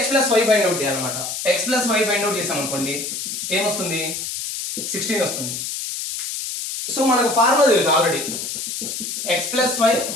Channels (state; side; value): noise; left; hiss, 5 dB below the sound